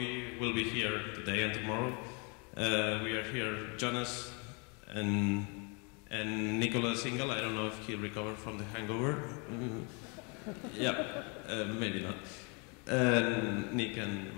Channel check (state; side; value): quieter; right; 33.5 dB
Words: will be here today and tomorrow. We are here, Jonas and Nicolas Single. I don't know if he recovered from the hangover. Yeah, maybe not. Nick and